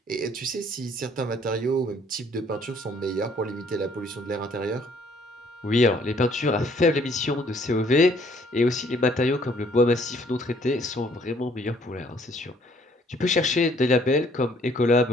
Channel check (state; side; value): normal; both; correlation 0.62